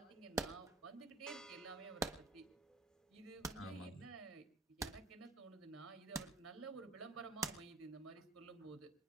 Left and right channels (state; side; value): quieter; left; 3.0 dB